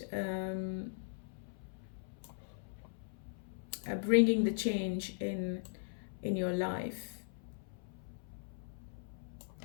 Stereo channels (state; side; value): silent; right; 52 dB below the other